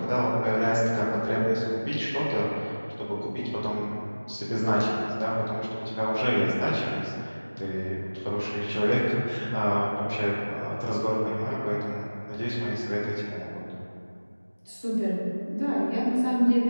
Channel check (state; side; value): inverted; both; correlation -1.00